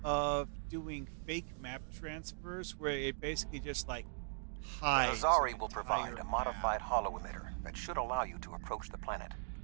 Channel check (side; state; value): left; silent; digital silence